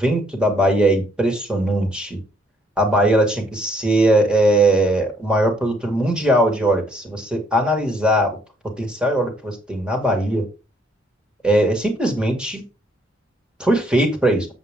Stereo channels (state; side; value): normal; both; correlation 0.66